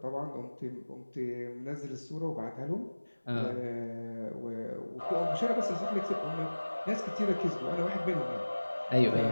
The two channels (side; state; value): both; inverted; correlation -1.00